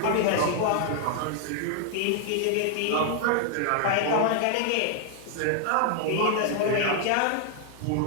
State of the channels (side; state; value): both; different; correlation 0.00